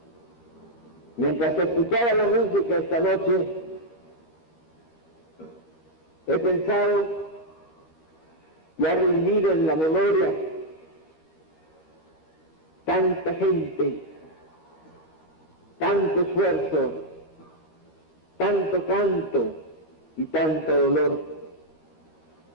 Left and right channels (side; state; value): right; late; 13 ms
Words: Mientras escuchaba la música esta noche, he pensado y ha rendido en la memoria tanta gente, tanto esfuerzo, tanto canto y tanto dolor,